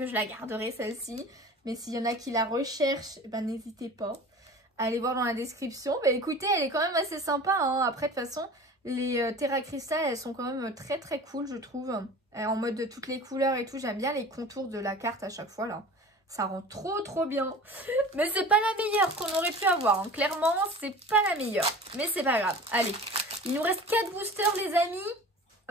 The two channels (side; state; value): both; normal; correlation 0.39